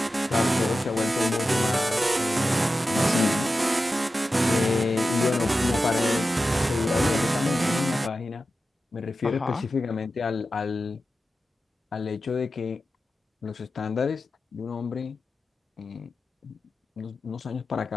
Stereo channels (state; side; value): normal; both; correlation 0.92